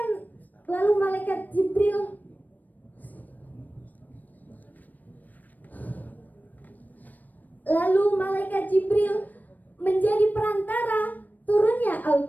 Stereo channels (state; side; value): late; right; 0.083 ms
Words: lalu malaikat Jibril menjadi perantara turunnya